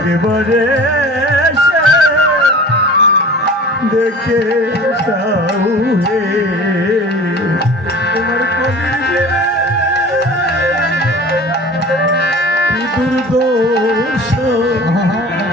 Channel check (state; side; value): normal; both; correlation 0.41